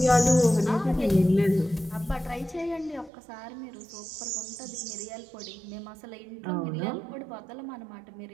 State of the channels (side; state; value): left; drops out; at 3.1 s